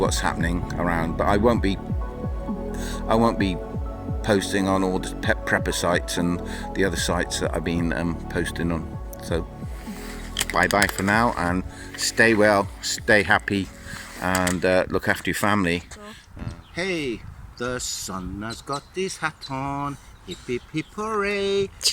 happening around. But I won't be posting on all the prepper sites and the other sites that I've been posting on. So bye bye for now, and stay well, stay happy, and look after your family. Hey, the sun has got his hat on, hip hip hip hooray,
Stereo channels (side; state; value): both; identical; correlation 1.00